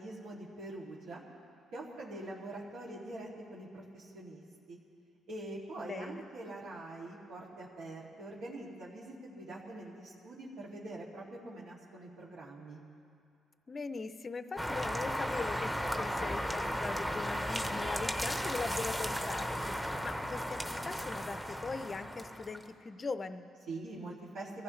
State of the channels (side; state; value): both; normal; correlation 0.91